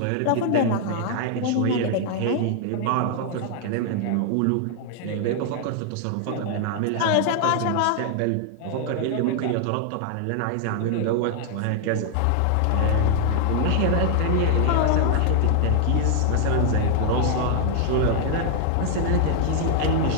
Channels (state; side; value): different; both; correlation 0.00